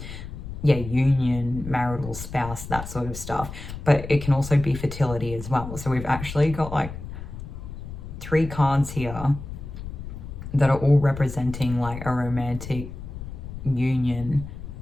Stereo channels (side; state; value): left; noise; rumble, 10 dB below the sound